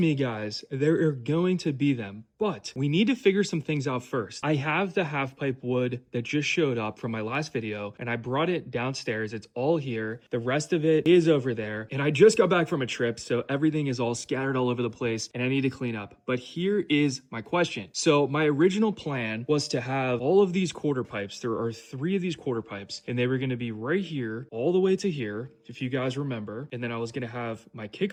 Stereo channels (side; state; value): both; identical; correlation 1.00